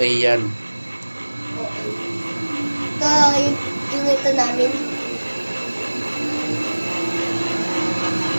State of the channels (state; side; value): inverted; both; correlation -1.00